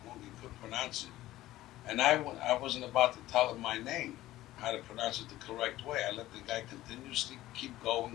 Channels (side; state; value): right; quieter; 15.6 dB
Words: couldn't pronounce it. And I wasn't about to tell him my name. how to pronounce it the correct way. I let the guy continuously keep